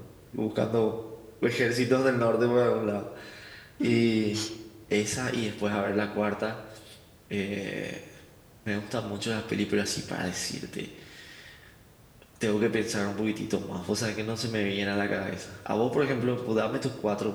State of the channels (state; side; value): identical; both; correlation 1.00